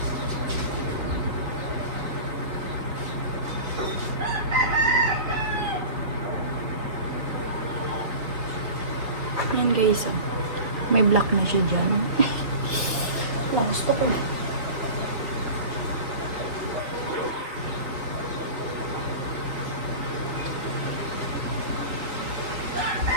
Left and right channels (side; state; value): left; late; 4.4 ms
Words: Yan guys, may black na siya dyan. Wala, gusto ko na.